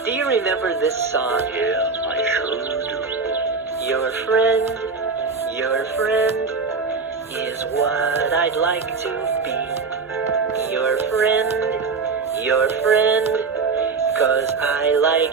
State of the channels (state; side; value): quieter; left; 4.7 dB